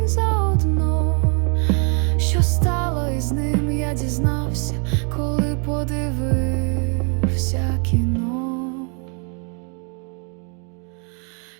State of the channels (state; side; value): quieter; left; 38.5 dB